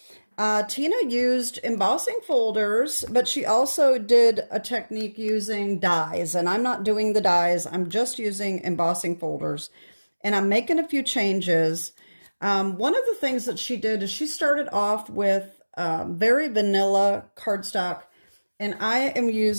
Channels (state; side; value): inverted; both; correlation -1.00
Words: Tina used embossing folders, but she also did a technique using dies, and I'm not doing the dies. I'm just using embossing folders, and I'm making a few changes. One of the things that she did is she started off with very vanilla cardstock, and I am